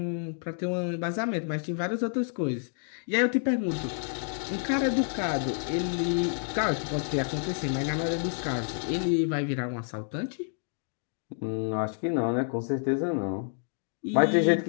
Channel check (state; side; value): silent; right; digital silence